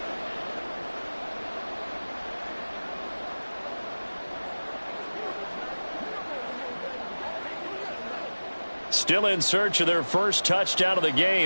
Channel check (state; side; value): inverted; both; correlation -1.00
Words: Still in search of their first touchdown of the